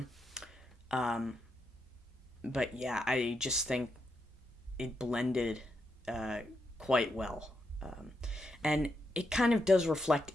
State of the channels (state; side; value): normal; both; correlation 0.83